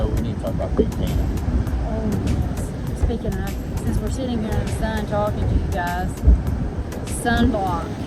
we need to talk about big can. Oh yes. Speaking of, since we're sitting here in the sun talking to you guys, sunblock.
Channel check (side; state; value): both; identical; correlation 1.00